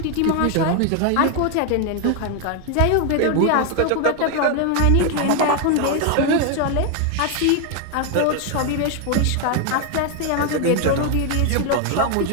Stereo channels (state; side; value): different; both; correlation 0.01